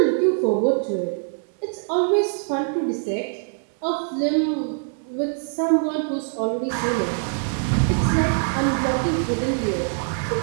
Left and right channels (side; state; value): left; silent; digital silence